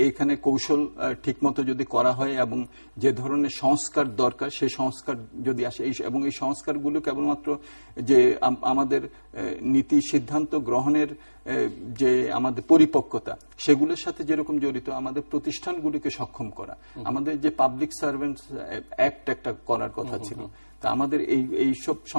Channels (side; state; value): both; inverted; correlation -1.00